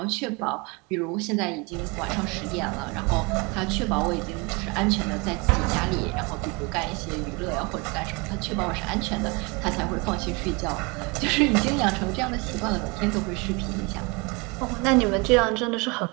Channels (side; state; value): left; quieter; 28.5 dB